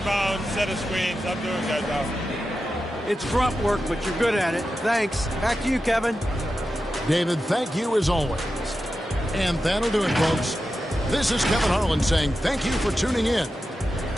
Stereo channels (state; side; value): normal; both; correlation 0.91